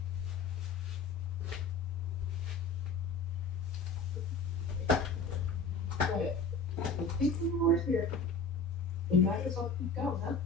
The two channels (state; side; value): quieter; right; 3.9 dB